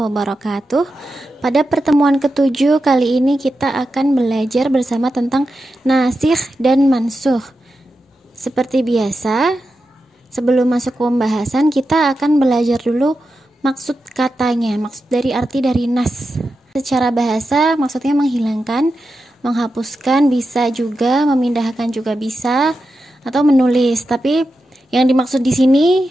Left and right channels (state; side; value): normal; both; correlation 0.89